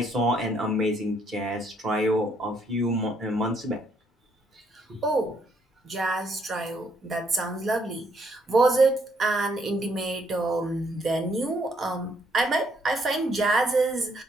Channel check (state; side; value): normal; both; correlation 0.71